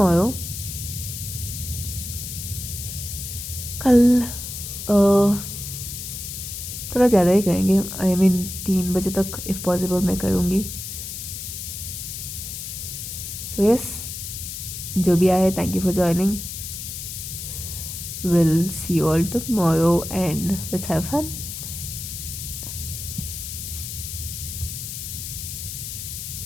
कल थोड़ा ज़्यादा ही करेंगे, आई मीन 3 बजे तक इफ़ पॉसिबल मैं करूँगी। सो यस, जो भी आए, thank you for joining. Will see you all tomorrow and let's have fun.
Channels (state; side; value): noise; left; hiss, 7 dB below the sound